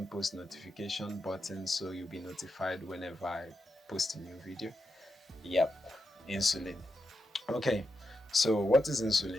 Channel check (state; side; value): normal; both; correlation 0.86